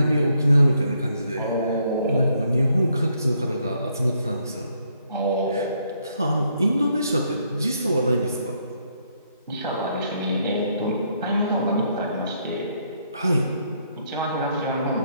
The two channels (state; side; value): inverted; both; correlation -0.72